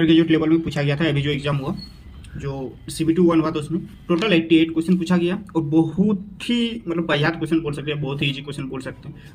ग्रेजुएट लेवल में पूछा गया था। अभी जो एग्जाम हुआ, जो CBT 1 हुआ था, उसमें टोटल 88 क्वेश्चन पूछा गया और बहुत ही वाहियात क्वेश्चन बोल सकते हैं, बहुत ही ईजी क्वेश्चन बोल सकते हैं।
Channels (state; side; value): identical; both; correlation 1.00